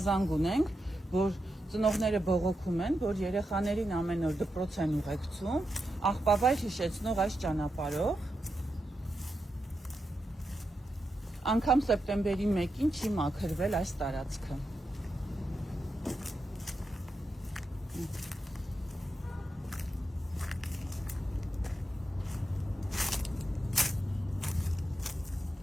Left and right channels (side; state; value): both; normal; correlation 0.87